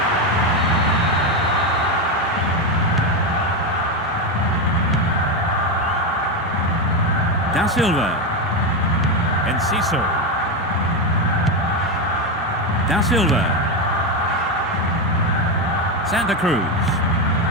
Da Silva. Enciso. Da Silva. Santa Cruz.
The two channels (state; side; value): normal; both; correlation 0.10